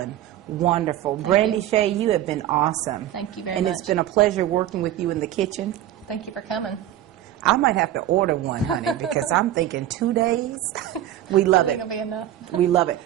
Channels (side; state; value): left; quieter; 12.4 dB